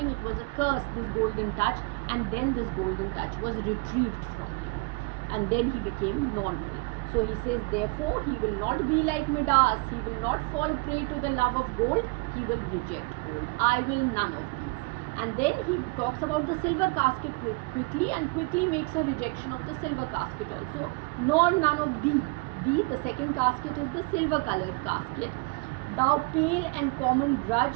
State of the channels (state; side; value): quieter; left; 28.3 dB